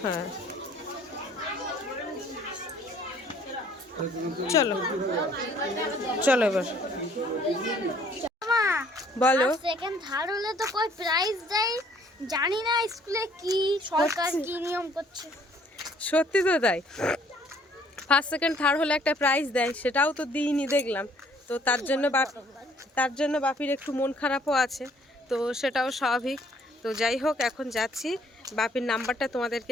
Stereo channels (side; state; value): both; normal; correlation 0.61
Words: হ্যাঁ চলো চলো এবার বলো। সেকেন্ড থার্ড হলে তো কই প্রাইজ দেয়, জানি না স্কুলে কি সরকার কি নিয়ম করছে। সত্যি তো তাই, ফার্স্ট সেকেন্ড থার্ড হলে একটা প্রাইজ দেয়, সেটাও তো দিইনি দেখলাম। তো তার জন্য বাপির একটু মন খারাপও আছে, তো সেটাও স্বাভাবিক। তো যাই হোক, এখন যাচ্ছি। বাপির নাম্বারটা